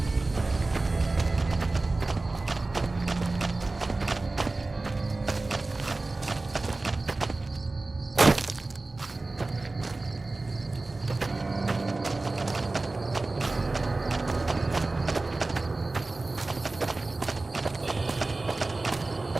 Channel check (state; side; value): quieter; left; 3.2 dB